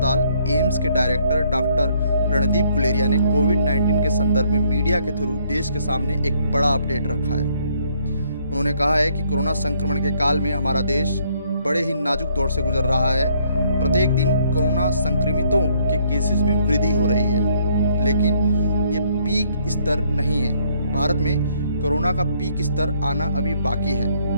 एम्स के डायरेक्टर डॉक्टर रणदीप गुलेरिया ने कोविड-19 के संदर्भ में मीडिया के थ्रू देश के सामने एक बड़ा अपडेट रखा है। उन्होंने कहा है कि कोरोना संक्रमण के काल में हमारा देश बड़े ही नाजुक दौर से गुजर रहा है। प्रत्येक दिन कोरोना संक्रमितों के केसेस में वृद्धि हो रही है, लेकिन ये पीक स्तर नहीं है। भारत में कोरोना का पीक स्तर आना अभी बाकी है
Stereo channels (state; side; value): inverted; both; correlation -0.67